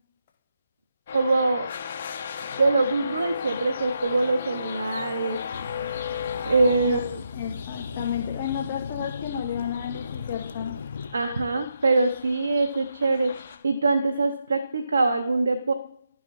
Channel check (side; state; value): both; inverted; correlation -0.82